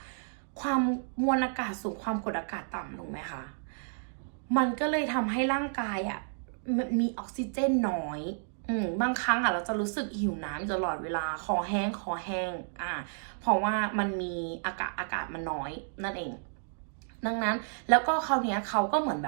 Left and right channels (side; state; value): left; silent; digital silence